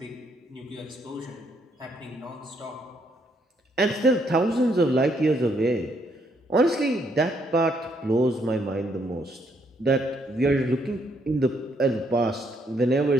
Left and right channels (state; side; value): normal; both; correlation 0.72